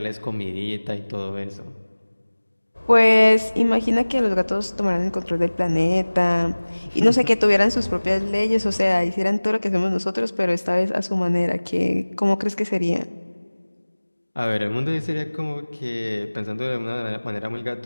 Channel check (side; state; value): both; inverted; correlation -1.00